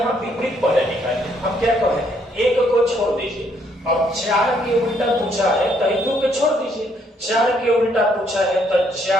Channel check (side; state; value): both; normal; correlation 0.70